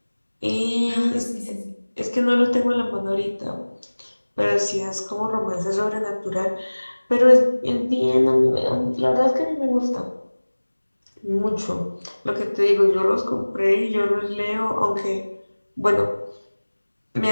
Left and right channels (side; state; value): both; inverted; correlation -1.00